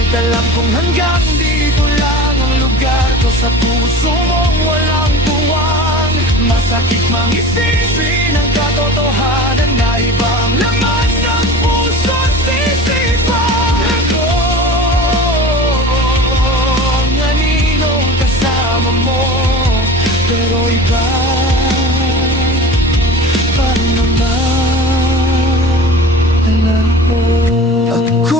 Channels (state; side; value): normal; both; correlation 0.37